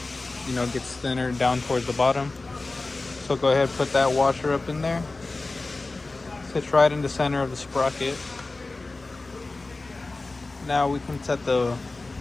you know, gets thinner down towards the bottom. So go ahead and put that washer up in there. Sits right in the center of the sprocket. Now we can set the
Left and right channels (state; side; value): quieter; right; 3.4 dB